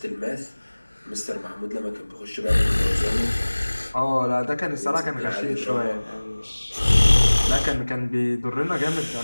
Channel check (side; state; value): both; inverted; correlation -1.00